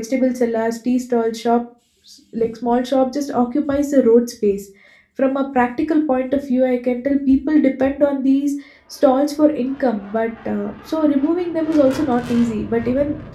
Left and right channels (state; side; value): identical; both; correlation 1.00